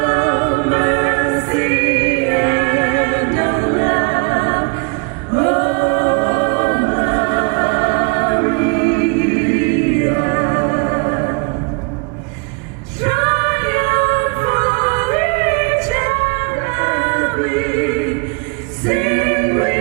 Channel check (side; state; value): left; quieter; 31.9 dB